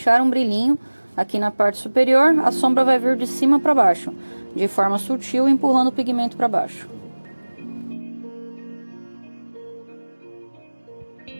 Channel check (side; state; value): both; inverted; correlation -1.00